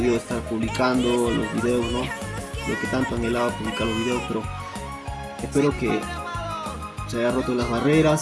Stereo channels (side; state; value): both; identical; correlation 1.00